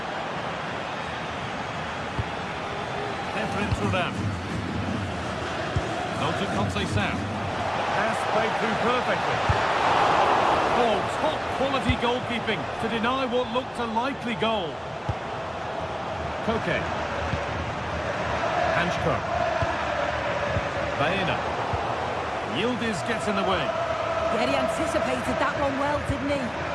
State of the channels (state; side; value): identical; both; correlation 1.00